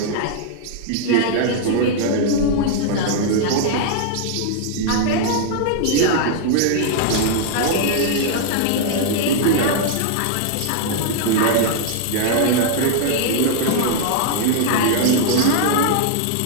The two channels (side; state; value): both; different; correlation 0.00